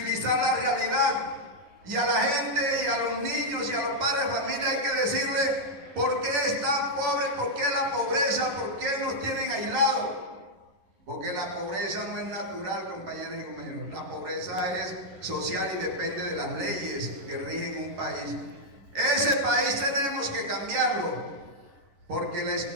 la realidad, y a la gente y a los niños y a los padres de familia hay que decirle por qué están pobres, por qué la pobreza, por qué nos tienen aislados. Porque la pobreza no es natural, compañeras y compañeros. La pobreza es social y depende de las leyes que rigen un país. Ese país tenemos que cambiarlo, porque la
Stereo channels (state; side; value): late; left; 10 ms